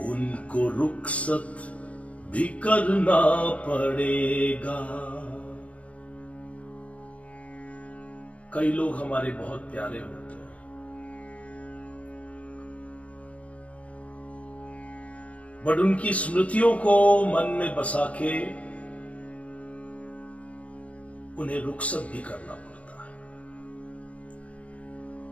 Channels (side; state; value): right; late; 0.064 ms